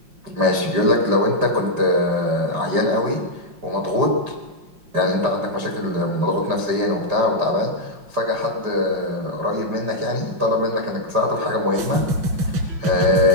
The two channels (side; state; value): left; late; 5.6 ms